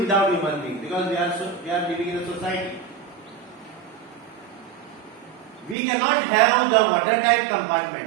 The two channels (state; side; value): drops out; left; at 5.8 s